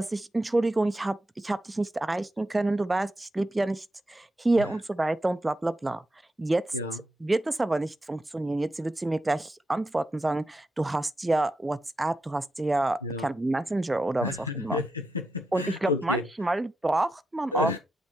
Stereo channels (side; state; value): both; normal; correlation 0.86